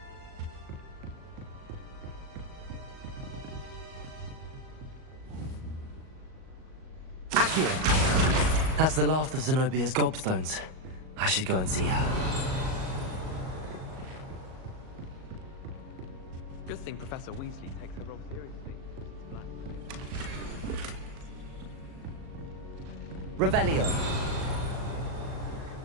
Accio. That's the last of Zenobia's gobstones. I should go and see her. Good thing Professor Weasley takes her role seriously. Revelio.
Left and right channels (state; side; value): late; left; 38 ms